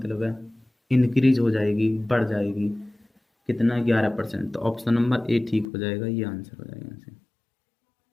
है इंक्रीज हो जाएगी, बढ़ जाएगी, कितना 11%, तो ऑप्शन नंबर ए ठीक हो जाएगा, ये आंसर हो जाएगा यहाँ से।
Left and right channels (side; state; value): right; drops out; at 5.7 s